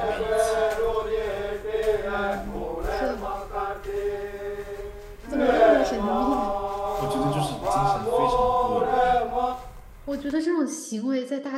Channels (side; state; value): both; identical; correlation 1.00